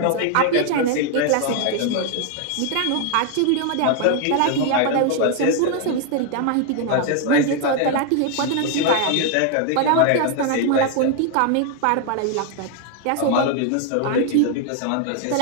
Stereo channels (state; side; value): different; both; correlation 0.00